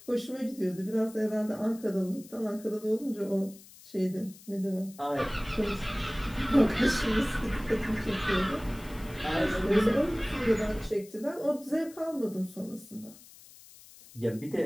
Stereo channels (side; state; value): left; noise; hiss, 21 dB below the sound